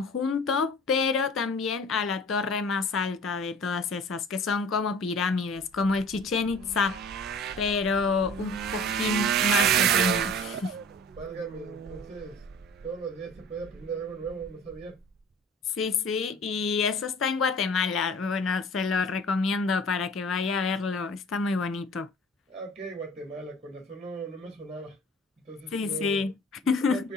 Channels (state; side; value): normal; both; correlation 0.45